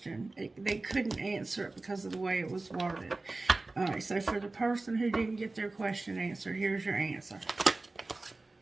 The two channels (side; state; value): left; quieter; 3.3 dB